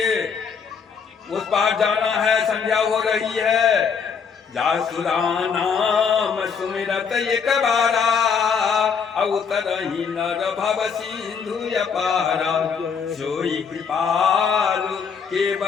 उस पार जाना है, संध्या हो रही है। जासुरा नाम सुमिरत एक बारा, अवतरहि नर भव सिंधु अपारा। सोई कृपालु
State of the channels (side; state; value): right; quieter; 6.3 dB